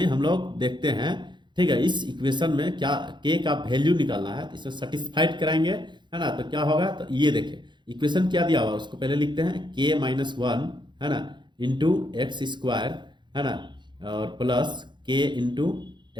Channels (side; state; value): left; late; 0.22 ms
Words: हम लोग देखते हैं, ठीक है। इस इक्वेशन में क्या के का वैल्यू निकालना है, इसे सेटिस्फाइड कराएंगे, है ना। तो क्या होगा, तो ये देखिए इक्वेशन क्या दिया हुआ है उसको पहले लिखते हैं। k-1, है ना, इंटू एक्स स्क्वायर, है ना, और plus k into